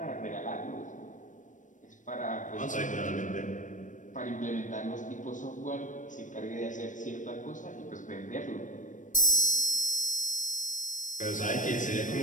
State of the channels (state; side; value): late; right; 0.37 ms